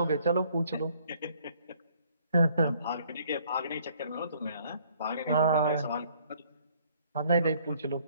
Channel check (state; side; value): inverted; both; correlation -0.62